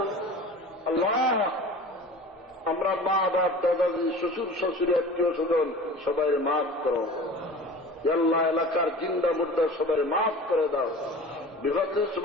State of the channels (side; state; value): both; normal; correlation 0.39